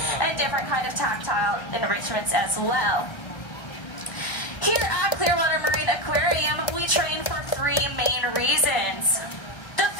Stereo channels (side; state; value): right; late; 1.3 ms